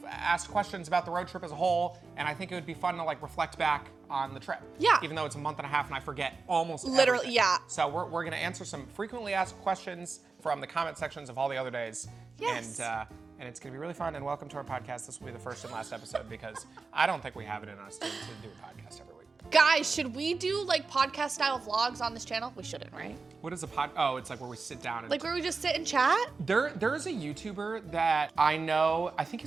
asked questions about the road trip as a whole, and I think it would be fun to like reflect back on the trip. Yeah. Even though it's a month and a half and I forget almost Literally, everything. yeah. So we're gonna answer some frequently asked questions from the comment sections of all the other days. Yes. And it's gonna be really fun, and welcome to our podcast. This will be the first and last episode because I don't think we have it in us to do a podcast every week. Guys, should we do like podcast style vlogs on this channel? We shouldn't, right? What is a pod? Oh, it's like where we sit down and Like where we just sit and chat? There's a YouTuber that I know, I think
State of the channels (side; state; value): left; quieter; 4.3 dB